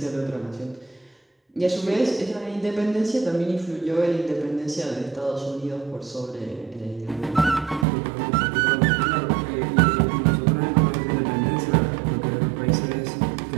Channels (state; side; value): drops out; left; at 7.9 s